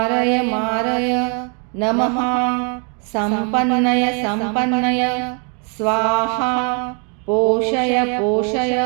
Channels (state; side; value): quieter; left; 38.0 dB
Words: नमः संपन्नय स्वाहा पोषय